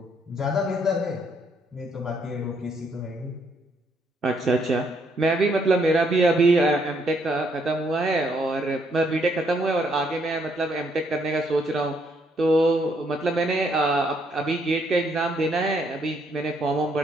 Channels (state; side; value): normal; both; correlation 0.71